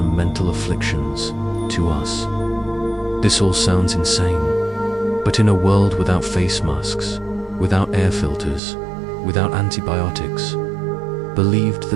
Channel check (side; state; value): left; drops out; at 8.6 s